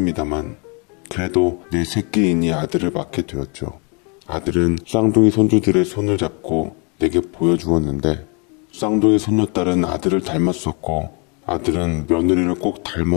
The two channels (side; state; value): right; quieter; 34.4 dB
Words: 그래도 내 새끼이니 아들을 맡게 되었죠. 아들은 쌍둥이 손주들의 손을 잡고 내게 보여주었는데 쌍둥이 손녀딸은 아들을 닮았었고 아들은 며느리를 꼭